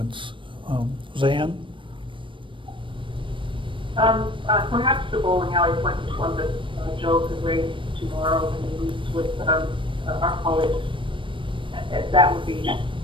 Zan? Perhaps the bowling alley point is one that Joe could raise tomorrow when he meets with our colleagues. That would be,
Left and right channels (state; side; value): late; left; 0.25 ms